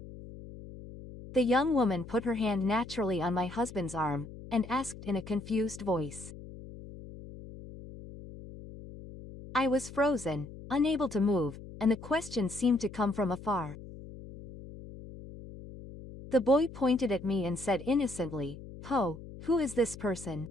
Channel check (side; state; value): left; noise; hum, 14 dB below the sound